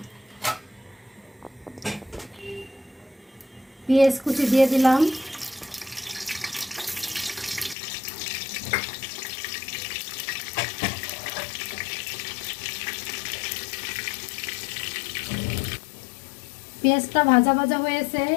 পেঁয়াজ কুচি দিয়ে দিলাম, পেঁয়াজটা ভাজা ভাজা হয়েছে।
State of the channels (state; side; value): drops out; right; at 7.8 s